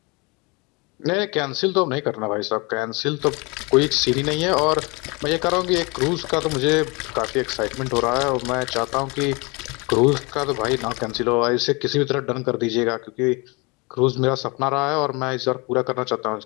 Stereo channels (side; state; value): right; quieter; 27.8 dB